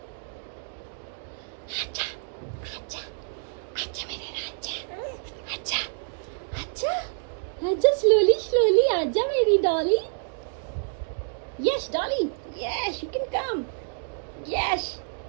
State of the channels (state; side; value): silent; left; digital silence